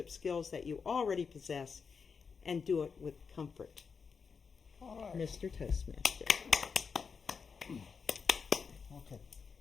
skills that you already possess and do it with comfort. All right. Mr. Toastmaster. Okay.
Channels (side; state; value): right; quieter; 5.7 dB